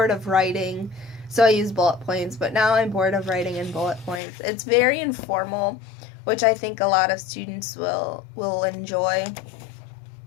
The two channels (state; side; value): drops out; right; at 4.2 s